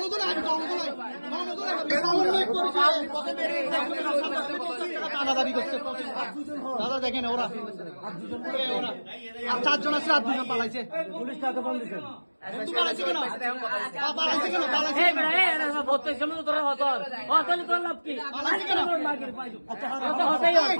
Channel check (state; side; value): inverted; both; correlation -1.00